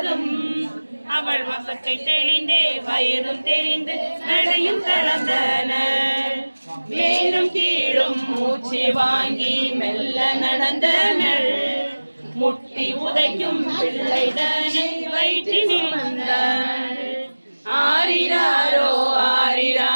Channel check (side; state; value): both; inverted; correlation -1.00